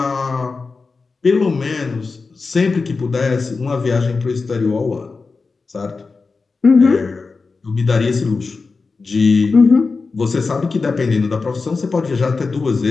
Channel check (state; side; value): quieter; right; 4.3 dB